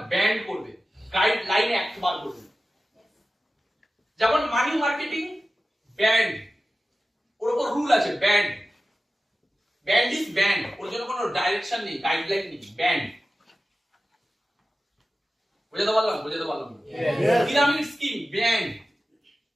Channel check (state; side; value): normal; both; correlation 0.95